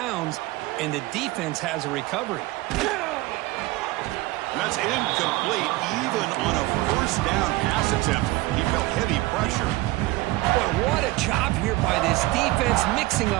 and the defense has a recovery. And that's incomplete, even on a first down pass attempt. He felt heavy pressure. Boy, what a job here by this defense, mixing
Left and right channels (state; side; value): quieter; left; 19.3 dB